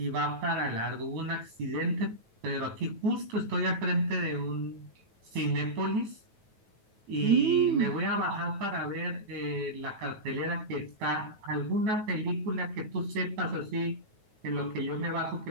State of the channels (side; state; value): left; late; 9.2 ms